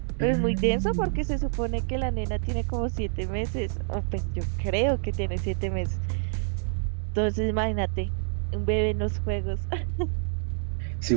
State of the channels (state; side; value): silent; left; digital silence